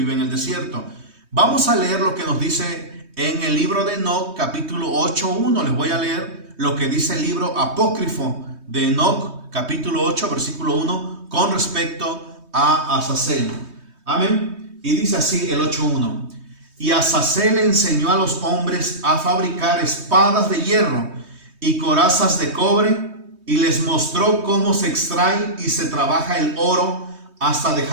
en el desierto. Vamos a leer lo que nos dice en el libro de Enoc, capítulo 8:1. Les voy a leer lo que dice el libro apócrifo de Enoc, capítulo 8, versículo 1, con respecto a Azazel. Amén. Y dice así el 8:1. Y Azazel enseñó a los hombres a fabricar espadas de hierro y corazas de cobre, y les mostró cómo se extrae y se trabaja el oro hasta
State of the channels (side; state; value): left; late; 3.2 ms